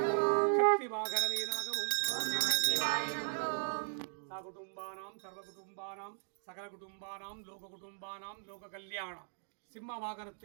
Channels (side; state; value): left; silent; digital silence